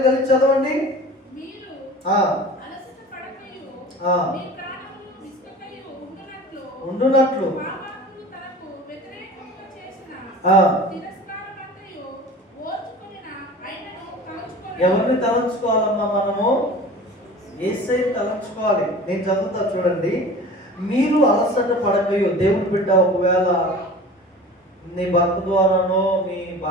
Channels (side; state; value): both; normal; correlation 0.39